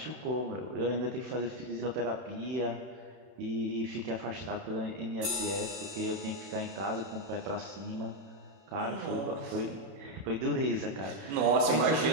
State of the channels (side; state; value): left; late; 31 ms